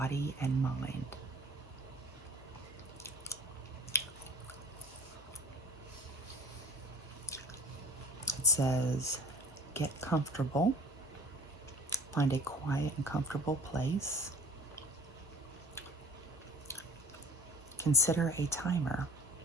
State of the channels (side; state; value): both; normal; correlation 0.48